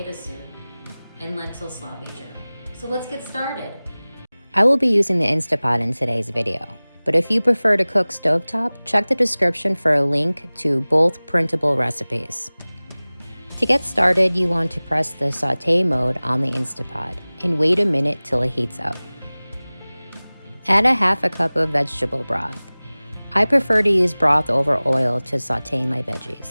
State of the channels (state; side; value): inverted; both; correlation -0.99